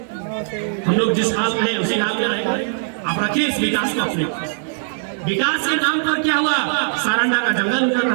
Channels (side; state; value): left; silent; digital silence